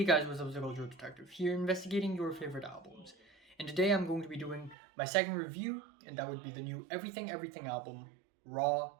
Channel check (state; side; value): drops out; left; at 4.8 s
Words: guys, what's up? It's Untitled Detective here, investigating your favorite albums. And today I'm going to be doing my second review, and that would be the new Everything Everything album, Raw